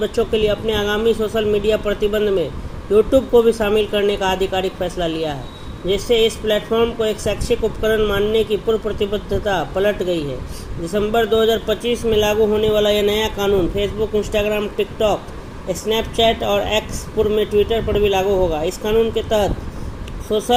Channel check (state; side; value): identical; both; correlation 1.00